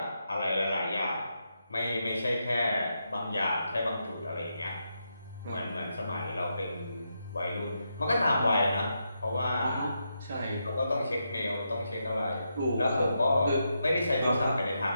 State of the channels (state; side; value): inverted; both; correlation -0.83